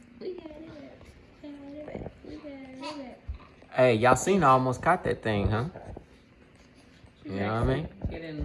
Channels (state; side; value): identical; both; correlation 1.00